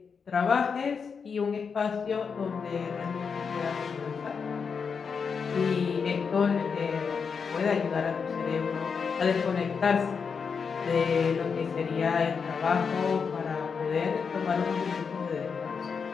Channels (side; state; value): right; quieter; 5.8 dB